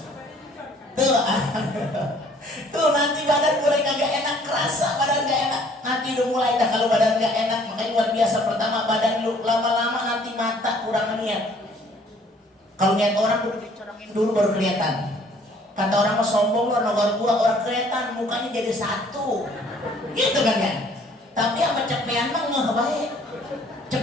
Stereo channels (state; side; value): normal; both; correlation 0.58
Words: Tuh nanti badan mulai kagak enak, kerasa badan gak enak. Nanti udah mulai dah kalau badan gak enak, makanya luar biasa. Pertama badan lu, lama-lama nanti mata kurang niat. Kalau niat orang udah dicorongin dulu baru kelihatan. Kata orang mau sombong lu, nomor gua orang kelihatan mukanya jadi satu. Gitu kan ya? Tapi sama cepean mah nggak baik.